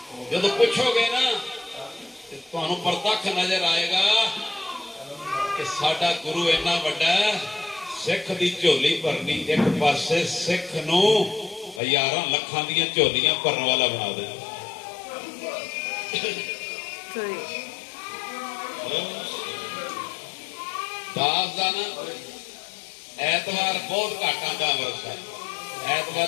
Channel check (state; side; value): drops out; right; at 11.8 s